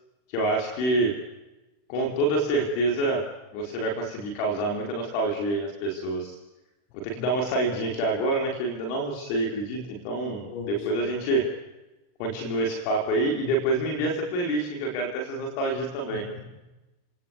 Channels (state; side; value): late; right; 40 ms